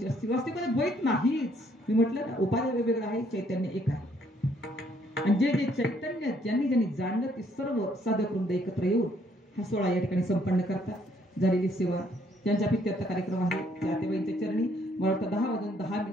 असतील, वास्तविक द्वैत नाहीच. मी म्हटलं ना, उपाय वेगवेगळं आहे, चैतन्य एक आहे. आणि जे जे चैतन्य ज्यांनी ज्यांनी जाणलं ते सर्व साधक वृंद एकत्र येऊन हा सोहळा या ठिकाणी संपन्न करतात. झालेली सेवा ज्यांच्या पित्यार्थ कार्यक्रम आहे त्या आतेबाईंच्या चरणी मला वाटतं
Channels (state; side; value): normal; both; correlation 0.67